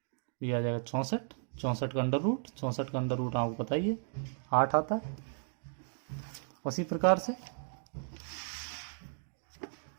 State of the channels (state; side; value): silent; left; 55 dB below the other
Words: ये आ जाएगा 64, 64 का अंडर रूट, 64 का अंडर रूट आपको पता ही है 8 आता है। उसी प्रकार से